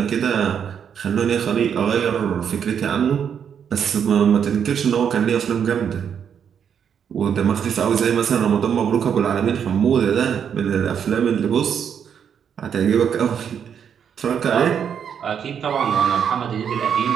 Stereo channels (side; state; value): left; quieter; 7.9 dB